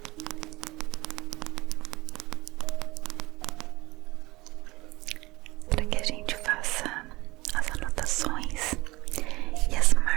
Para que a gente faça as anotações e as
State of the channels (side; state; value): left; quieter; 20.7 dB